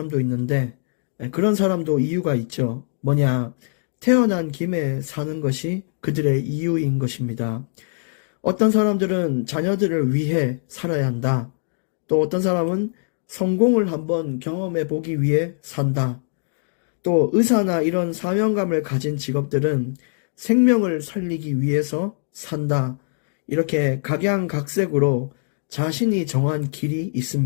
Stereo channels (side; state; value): right; silent; digital silence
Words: 있는데 그런 사람도 이유가 있죠. 뭐냐? 태어난 김에 사는 것이 그들의 이유인 것입니다. 어떤 사람들은 자녀들을 위해 살아야 한다. 또 어떤 사람은 성공을 한번 경험해 보기 위해 산다. 또 의사나 이런 사명감을 가진 직업들은 생명을 살리기 위해서 산다. 이렇게 각양각색으로 자신이 정한 길이